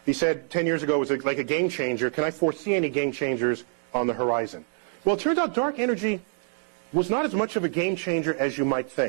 he said 10 years ago was like a game changer. Can I foresee any game changers on the horizon. Well, it turns out dark energy was not as much of a game changer as you might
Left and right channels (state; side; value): silent; left; digital silence